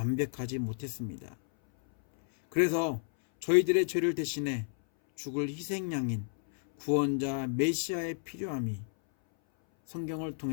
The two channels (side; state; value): right; silent; 57 dB below the other